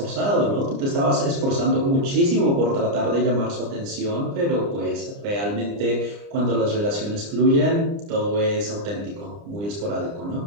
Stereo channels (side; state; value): left; late; 29 ms